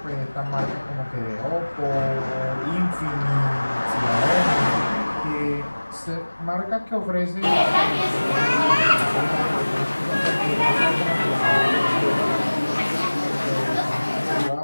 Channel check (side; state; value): both; inverted; correlation -1.00